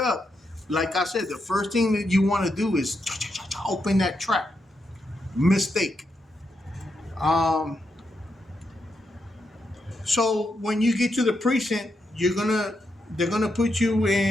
like I said, the first thing that you want to do is open that trap. Mistake. So when you get to the precinct, they're gonna put you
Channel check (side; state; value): both; normal; correlation 0.83